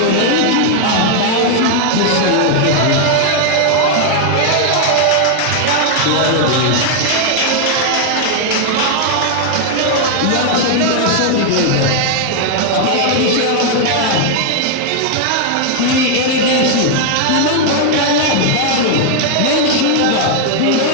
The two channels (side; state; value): both; different; correlation 0.00